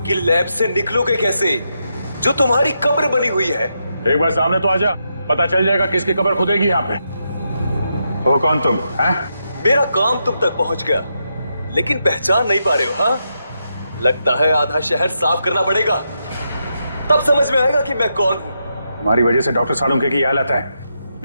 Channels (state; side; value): inverted; both; correlation -0.83